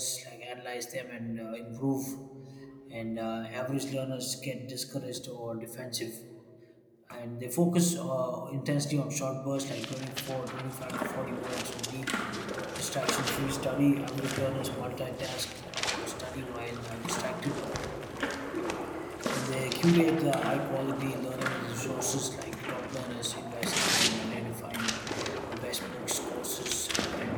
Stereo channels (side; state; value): both; identical; correlation 1.00